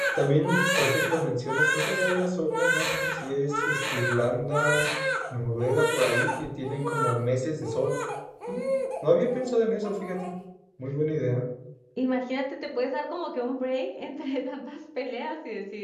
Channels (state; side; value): identical; both; correlation 1.00